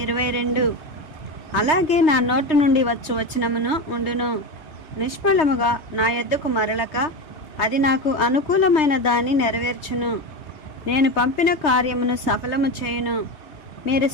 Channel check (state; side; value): late; right; 3.2 ms